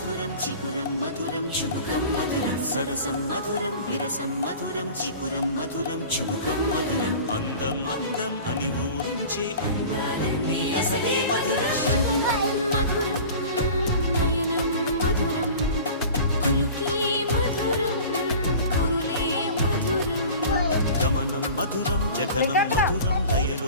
చికురం మధురం చుబుకం మధురం సరసం మధురం విరసం మధురం చికురం మధురం చుబుకం మధురం అందం అందం అని ఊరించే అందాలన్నీ అసలే మధురం శ్రవణం మధురం నయనం మధురం కులుకే మధురం కురులే మధురం గమనం మధురం జగనం మధురం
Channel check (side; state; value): both; inverted; correlation -0.40